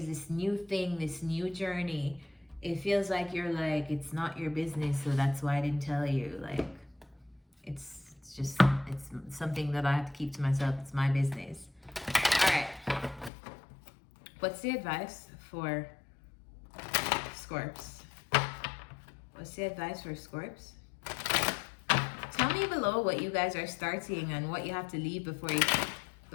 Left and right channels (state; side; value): drops out; right; at 13.3 s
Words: this new thing, this new journey, it feels like you're like, it's not your business, so that's why I didn't tell you. Like, it's something that I have to keep to myself. It's my business. All right. What's the advice for Scorps? What's the advice for Scorps? Tell me below what you guys are starting and what you have to leave